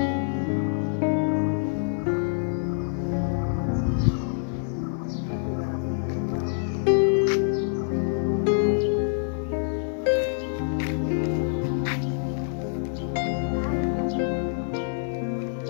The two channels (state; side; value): silent; right; digital silence